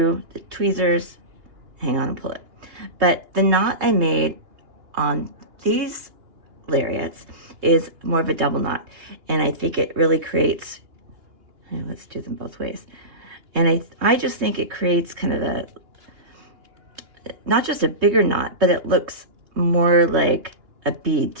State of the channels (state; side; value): late; left; 2.9 ms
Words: the tweezers, hang on and pull it. But the knot I made on these lariats is more of a double knot, and I think it really creates, let's do them both ways. And I just think it creates kind of not just a bigger knot, but it looks more like a bead